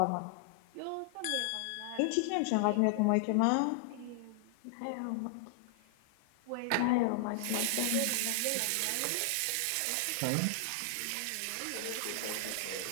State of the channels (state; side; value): different; both; correlation 0.00